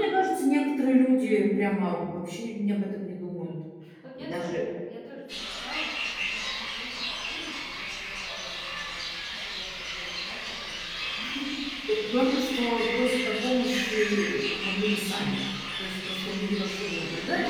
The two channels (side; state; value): both; identical; correlation 1.00